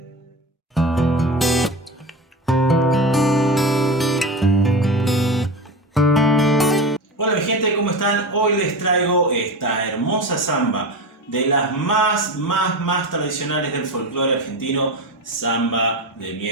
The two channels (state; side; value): normal; both; correlation 0.26